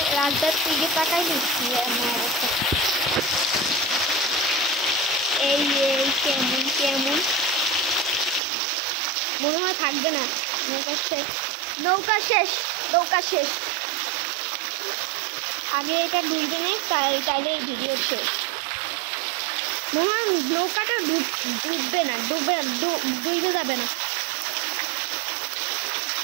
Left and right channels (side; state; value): left; drops out; at 8.4 s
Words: রাস্তার দিকে তাকাই দিচ্ছি এমন অবস্থা। এই কেমন মনে হয় থাকবে না, নৌকা শেষ। আমি এটা ডুববে নেই, তাইলে এই ভিডিও শেষ। মনে হয় নৌকাটা ডুববে না, ডুবে যাবে না,